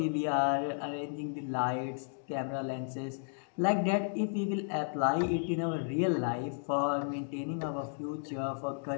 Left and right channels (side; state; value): right; silent; digital silence